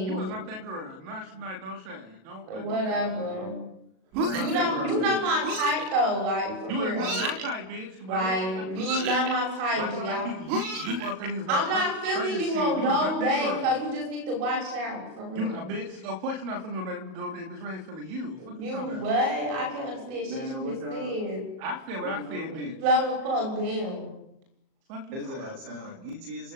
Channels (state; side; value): late; left; 37 ms